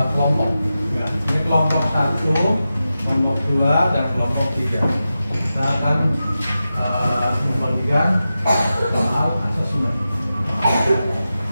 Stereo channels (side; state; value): both; inverted; correlation -0.92